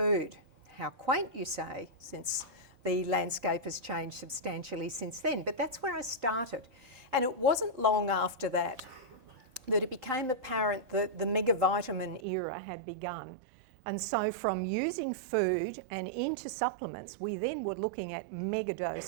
How quaint, you say, since the landscape has changed substantially since then. But that's where I started. And it wasn't long after that that it became apparent that the megavitamin era had begun. And so from using food and into supplements, we then were looking at mega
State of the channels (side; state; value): left; drops out; at 12.2 s